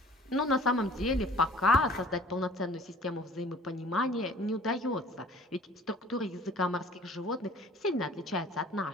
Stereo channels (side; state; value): both; normal; correlation 0.49